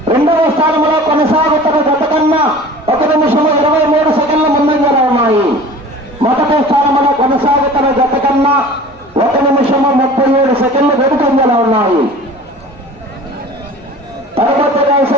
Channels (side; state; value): both; normal; correlation 0.42